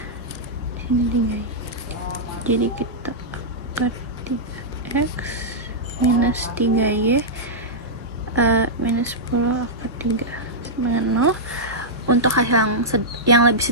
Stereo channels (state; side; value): normal; both; correlation -0.10